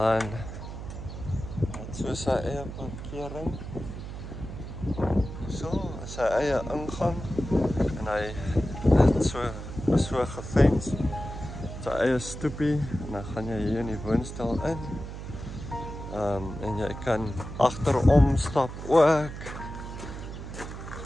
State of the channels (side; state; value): right; noise; hum, 9 dB below the sound